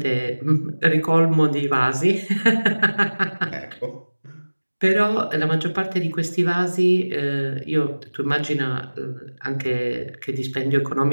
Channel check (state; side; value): inverted; both; correlation -1.00